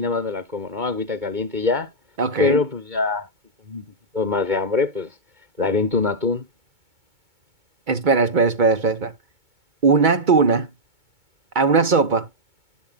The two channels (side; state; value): left; late; 2.2 ms